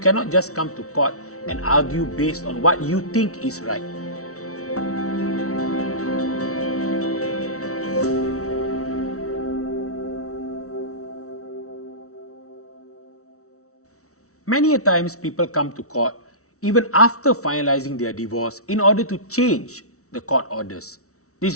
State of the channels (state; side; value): late; right; 0.64 ms